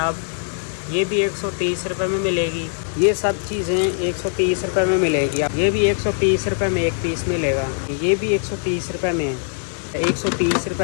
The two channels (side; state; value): right; silent; 60 dB below the other